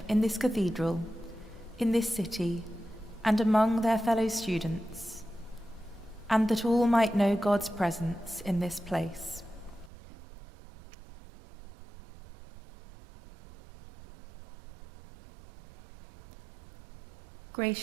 in this cathedral, in this city, and among their fellow students, and that all might know God's presence in this place.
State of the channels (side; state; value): left; drops out; at 9.9 s